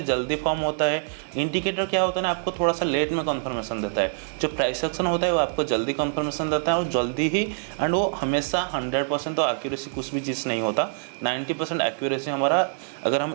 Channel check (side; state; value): left; silent; 56 dB below the other